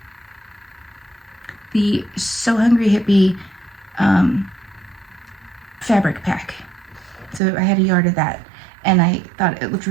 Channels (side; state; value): left; drops out; at 7.4 s